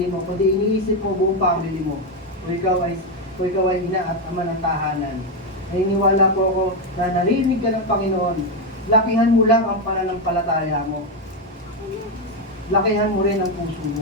mo, kundi iniisip mo buong family mo. Kung ikaw ay ina at ama ng tahanan. Naniniwala po ako na narinig ka ng Panginoon. Lakihan mo lang ang pananampalataya mo. Lakihan mo rin ang puso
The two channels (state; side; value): normal; both; correlation 0.07